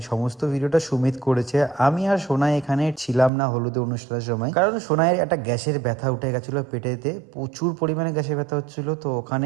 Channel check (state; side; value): drops out; left; at 3.3 s